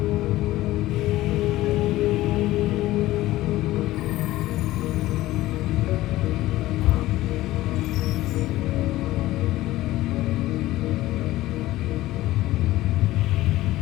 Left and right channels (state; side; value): quieter; right; 16.5 dB